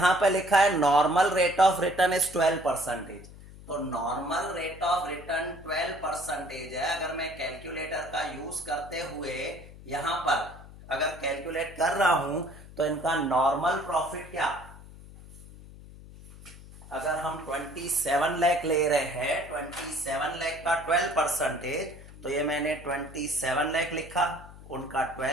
पर लिखा है normal rate of return is 12%। तो नॉर्मल रेट ऑफ रिटर्न 12% है। अगर मैं कैलकुलेटर का यूज करते हुए यहां पर अगर कैलकुलेट कर रहा हूं तो इनका नॉर्मल प्रॉफिट क्या, अगर हम 27 लाख ले रहे हैं, 27 लाख का 12%, तो ये मैंने 27 लाख लिखा, उनका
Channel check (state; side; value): noise; left; hum, 18 dB below the sound